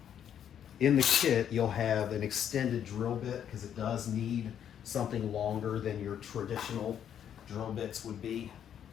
in the kit, you'll have an extended drill bit because it does need something longer than your traditional drill bits would be.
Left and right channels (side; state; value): right; quieter; 9.3 dB